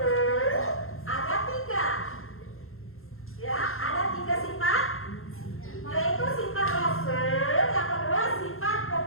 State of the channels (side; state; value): right; late; 0.61 ms